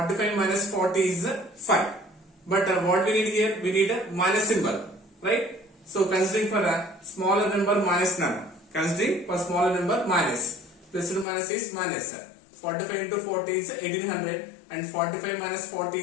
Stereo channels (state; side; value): drops out; right; at 11.2 s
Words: minus 40 is 5. But what we need here, we need a minus symbol, right? So considering for a smaller number minus none, considering for smaller number minus, plus to minus is minus. 45 into 40 is 1800 and 45 minus 40